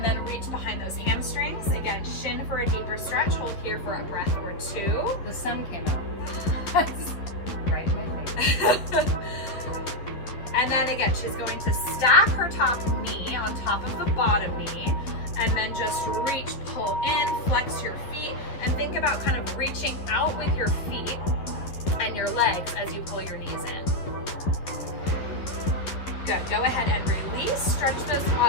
then reach behind those hamstrings. Again, shin for a deeper stretch. Hold here for a breath or 2. The sun came out. Right in my face. And then again, she's going to stack her top knee on top of the bottom knee, and then just reach, pull in, flex your feet, and think about kind of reaching out with your feet and your legs as you pull your knees in. Good. Go ahead and release. Stretch those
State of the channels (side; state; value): right; late; 11 ms